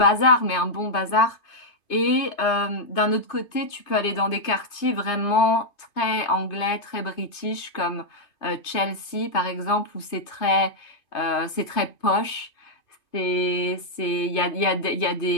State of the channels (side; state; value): right; late; 2.5 ms